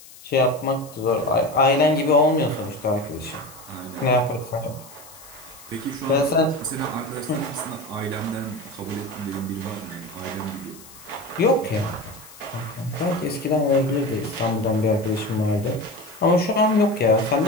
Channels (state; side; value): noise; left; hiss, 20 dB below the sound